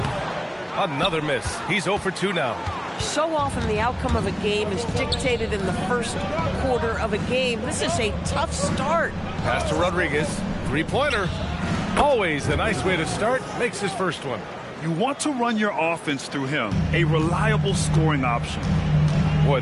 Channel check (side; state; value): both; identical; correlation 1.00